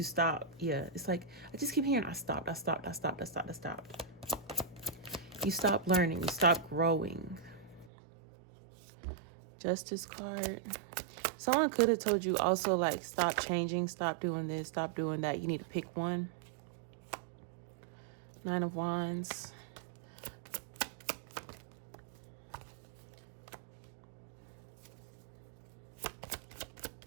stopped. Yeah. It's like, I just keep hearing, I stopped. You stopped learning. You stopped growing. Justice card. Someone could have told you also, like, stop changing, stop doing this, stop doing that. You need to pick one. 9 of Wands.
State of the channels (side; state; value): left; drops out; at 7.9 s